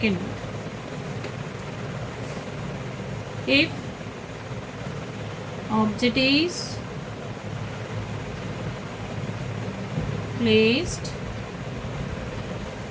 if object is placed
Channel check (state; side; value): identical; both; correlation 1.00